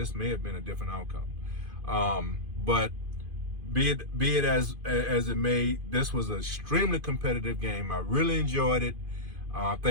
may have been a different outcome. But be it as it may, this was an extremely competitive game. I really enjoyed it. I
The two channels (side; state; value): left; late; 2.5 ms